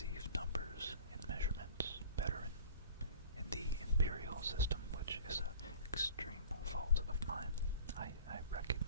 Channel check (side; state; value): both; inverted; correlation -0.42